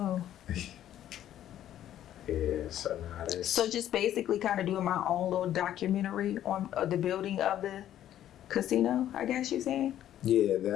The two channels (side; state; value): right; quieter; 11.7 dB